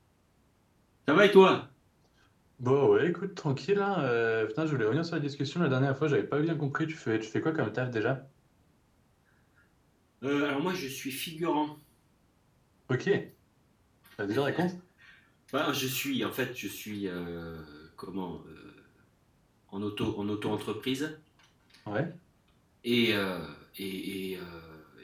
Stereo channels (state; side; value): identical; both; correlation 1.00